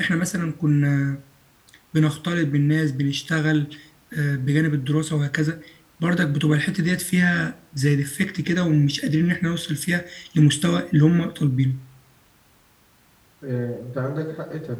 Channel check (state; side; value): identical; both; correlation 1.00